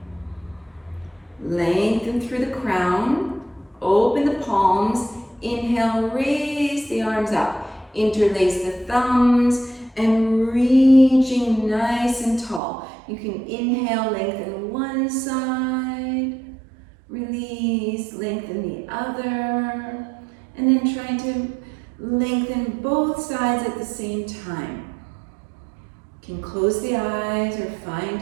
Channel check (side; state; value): left; drops out; at 12.6 s